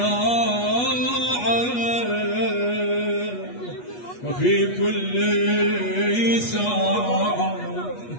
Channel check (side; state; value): right; late; 8.3 ms